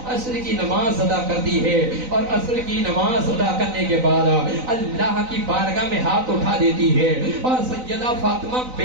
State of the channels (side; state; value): left; late; 3.9 ms